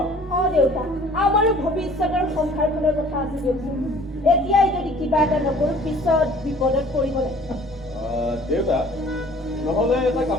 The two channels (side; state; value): both; normal; correlation 0.51